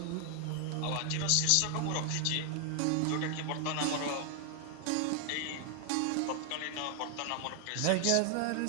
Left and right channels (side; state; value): both; different; correlation 0.00